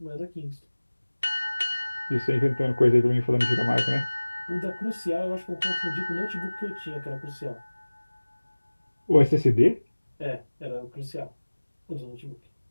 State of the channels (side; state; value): both; inverted; correlation -1.00